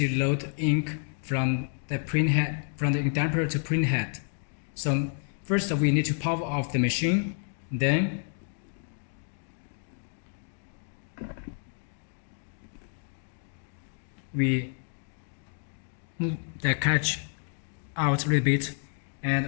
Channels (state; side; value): silent; right; 58 dB below the other